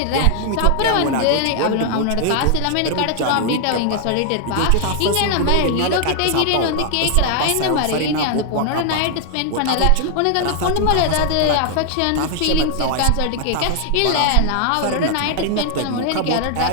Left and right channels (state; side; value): different; both; correlation 0.00